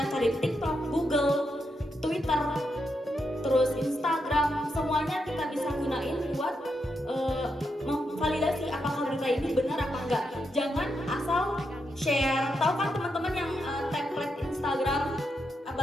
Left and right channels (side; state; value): both; normal; correlation 0.83